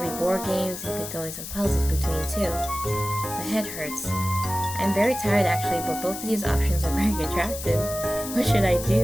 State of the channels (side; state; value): left; noise; hiss, 9 dB below the sound